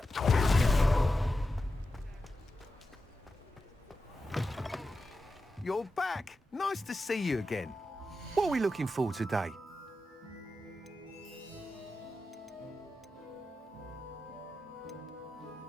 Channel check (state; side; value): normal; both; correlation 0.91